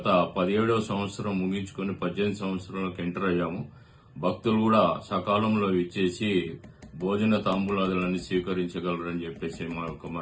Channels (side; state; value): both; identical; correlation 1.00